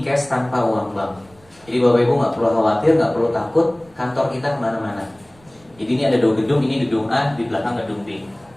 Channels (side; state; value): right; noise; rumble, 29 dB below the sound